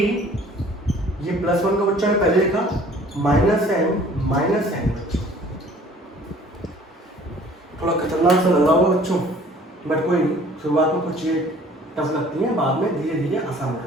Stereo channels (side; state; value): both; normal; correlation 0.52